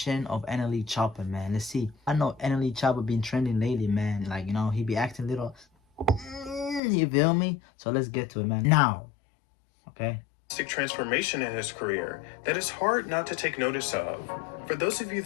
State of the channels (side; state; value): right; drops out; at 6.8 s